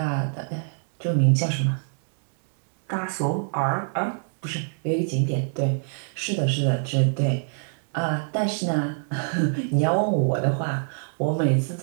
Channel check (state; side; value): silent; left; digital silence